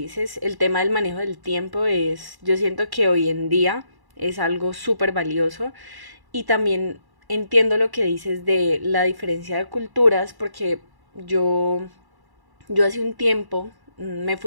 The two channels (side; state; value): left; late; 1.1 ms